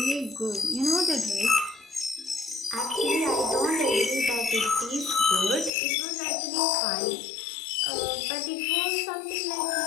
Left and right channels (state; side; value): drops out; right; at 5.7 s